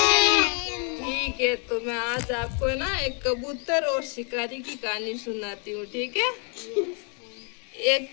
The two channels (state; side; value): quieter; right; 38.0 dB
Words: ठीक है, तो मैं आज आपको ना एक कबूतर और शिकारी की कहानी सुनाती हूँ, ठीक है? एक